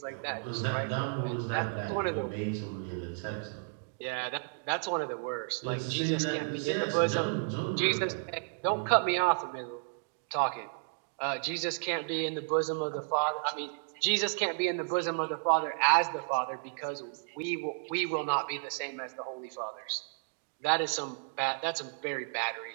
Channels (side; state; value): left; silent; digital silence